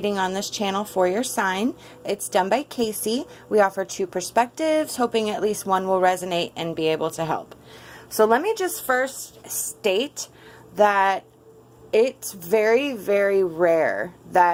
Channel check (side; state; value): both; identical; correlation 1.00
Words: on this channel for your sign. It's done by Kacee. We offer two perspectives, hoping at least one will resonate and be able to help. So let me just first state that it's very, very rare